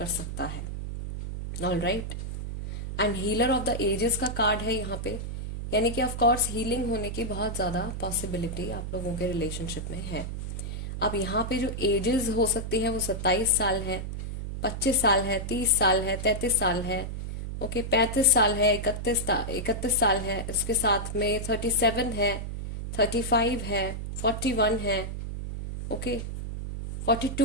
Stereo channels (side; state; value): right; noise; hum, 5 dB below the sound